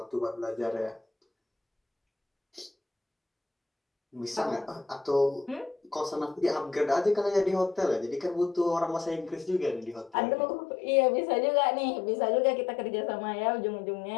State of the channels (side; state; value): right; drops out; at 10.2 s